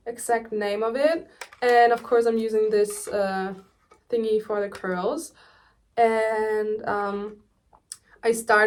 exact name of it. And of course I'm using this thingy for the curls. And I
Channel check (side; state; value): both; identical; correlation 1.00